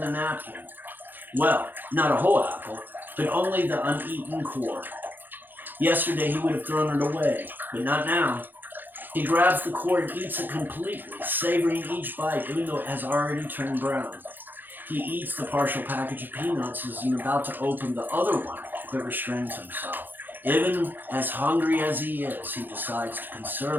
a napkin. Well, not a whole apple, but only the uneaten core. Yesterday he would have thrown it away, but not now. He grabs the core and eats it completely, savoring each bite even though it has already turned brown. He eats the partial package of peanuts as he's about to open the other one, but restrains himself. Even as hungry as he is, he decides to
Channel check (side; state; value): left; late; 0.090 ms